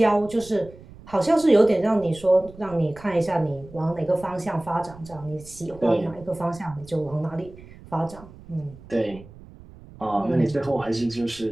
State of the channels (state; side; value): noise; right; rumble, 20 dB below the sound